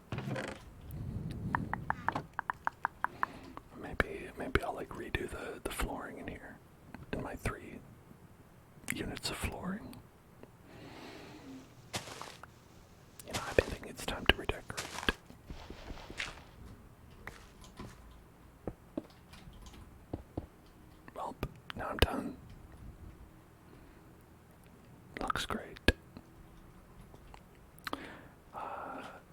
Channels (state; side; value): identical; both; correlation 1.00